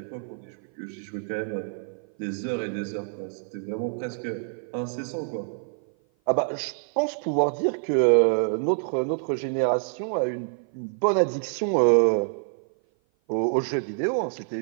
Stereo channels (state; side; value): silent; left; 55 dB below the other